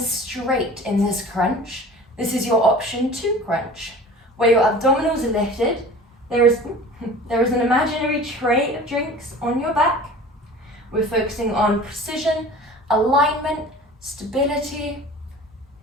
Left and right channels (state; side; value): normal; both; correlation 0.41